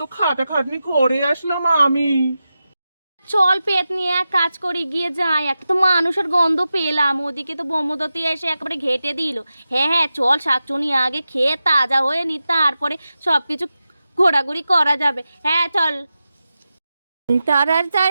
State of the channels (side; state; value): both; inverted; correlation -0.92